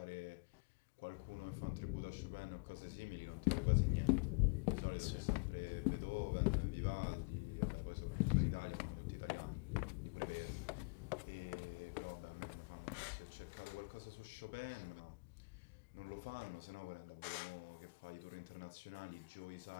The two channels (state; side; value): quieter; right; 34.0 dB